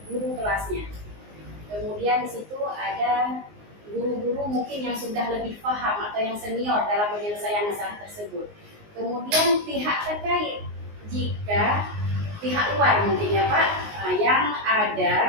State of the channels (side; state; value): left; late; 19 ms